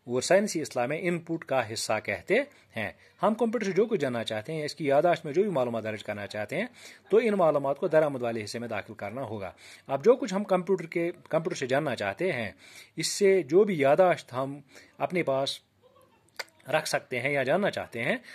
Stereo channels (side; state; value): both; identical; correlation 1.00